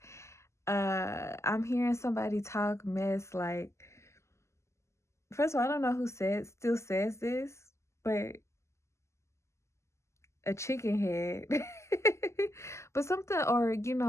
I'm hearing somebody talk mess like, first of all, I don't know who still says this, but a chicken head. But something, or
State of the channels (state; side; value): late; right; 0.13 ms